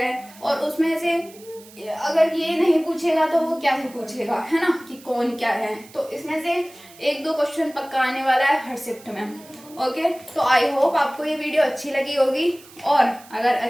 और उसमें से अगर ये नहीं पूछेगा तो वो क्या ही पूछेगा, है ना, कि कौन क्या है। तो इसमें से 1-2 क्वेश्चन पक्का आने वाला है हर शिफ्ट में। ओके, तो आई होप आपको ये वीडियो अच्छी लगी होगी, और अगर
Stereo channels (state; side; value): noise; right; hiss, 22 dB below the sound